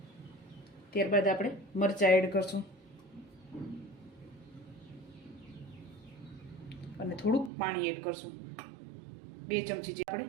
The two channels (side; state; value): left; drops out; at 7.5 s